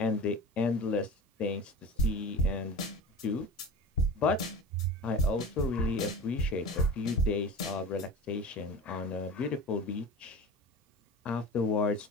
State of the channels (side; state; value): both; normal; correlation 0.34